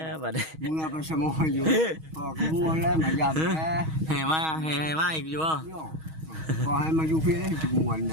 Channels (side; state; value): left; late; 6.3 ms